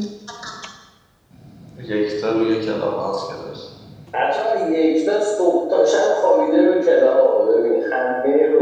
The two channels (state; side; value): identical; both; correlation 1.00